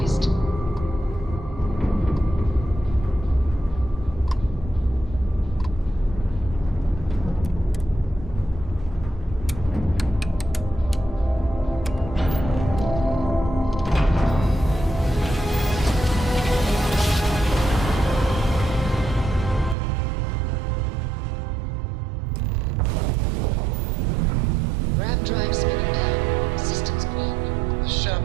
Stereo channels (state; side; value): drops out; left; at 19.8 s